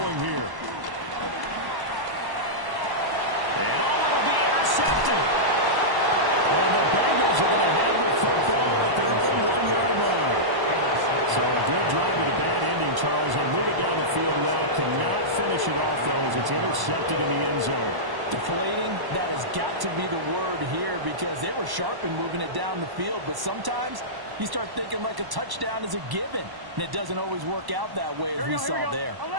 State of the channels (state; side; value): late; left; 1.0 ms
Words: here. And it'll be intercepted. And the Bengals are going to have the football at their own 1-yard line. So a good drive with a bad ending, Charles, and move it down the field well. Cannot finish it off, though, as it's intercepted in the end zone. Deflating, that has got to be the word here, because they were sharp in moving it down the field, but sometimes you start thinking like a touchdown is a given, and it doesn't always work out that way as we saw there.